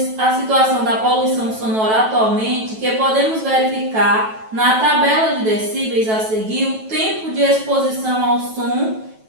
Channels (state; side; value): late; left; 9.2 ms